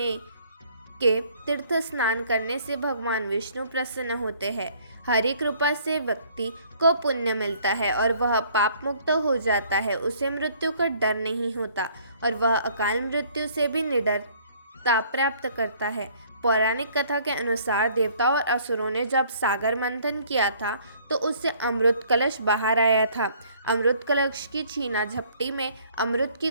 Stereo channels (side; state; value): both; inverted; correlation -0.59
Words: के तीर्थ स्नान करने से भगवान विष्णु प्रसन्न होते हैं। हरि कृपा से व्यक्ति को पुण्य मिलता है और वह पाप मुक्त हो जाता है। उसे मृत्यु का डर नहीं होता और वह अकाल मृत्यु से भी निडरता प्राप्त करता है। पौराणिक कथा के अनुसार देवताओं और असुरों ने जब सागर मंथन किया था तो उससे अमृत कलश बाहर आया था। अमृत कलश की छीना झपटी में अमृत की